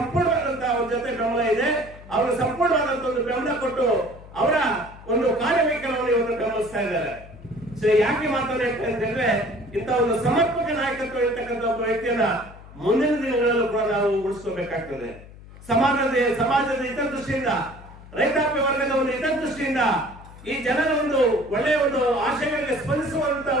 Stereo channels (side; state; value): left; noise; hum, 19 dB below the sound